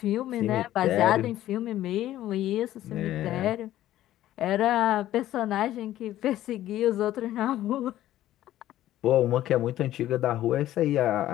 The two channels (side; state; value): right; quieter; 13.6 dB